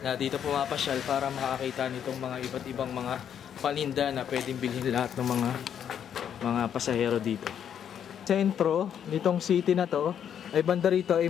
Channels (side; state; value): right; quieter; 8.9 dB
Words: dito pumapasyal para makakita nitong mga iba't ibang mga paninda na pwedeng bilhin lahat ng mga pasahero dito. Sentro nitong city na to ay banda rito ay